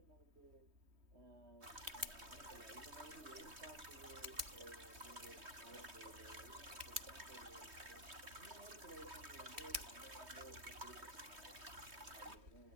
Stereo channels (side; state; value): left; late; 3.2 ms